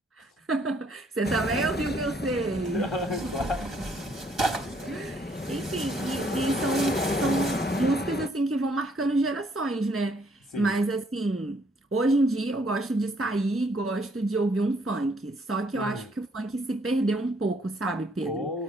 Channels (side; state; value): both; normal; correlation 0.67